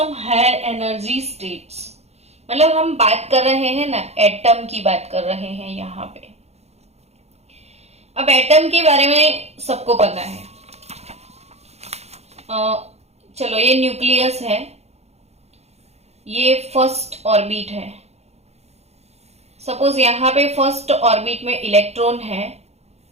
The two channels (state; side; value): late; left; 0.31 ms